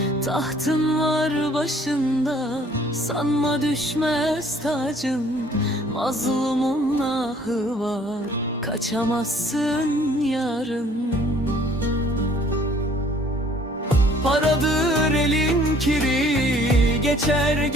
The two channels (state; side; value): normal; both; correlation 0.57